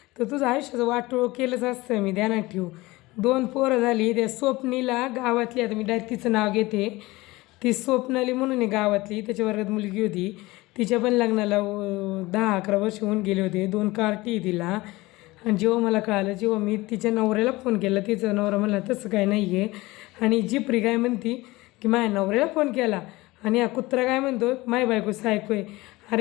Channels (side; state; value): right; quieter; 20.5 dB